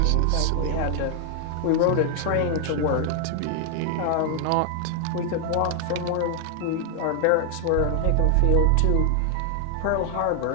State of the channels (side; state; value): both; different; correlation 0.00